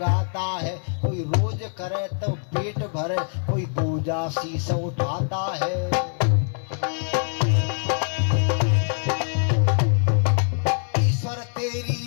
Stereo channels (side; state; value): right; silent; 63 dB below the other